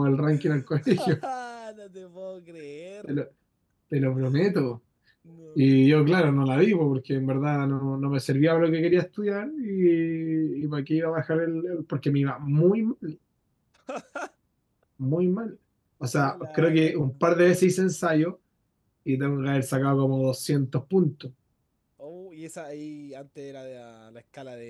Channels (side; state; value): both; identical; correlation 1.00